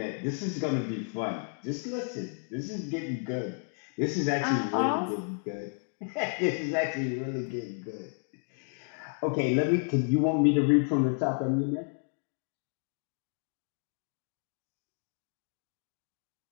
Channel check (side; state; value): right; silent; 57 dB below the other